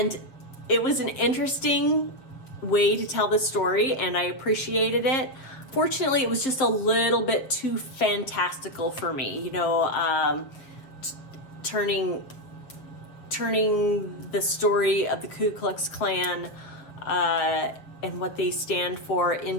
it was an interesting way to tell the story, and I appreciated it. Fortunately, it was just a little bit too fantastical for me, you know, turning the story of the Ku Klux Klan and what they stand for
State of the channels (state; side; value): late; right; 7.3 ms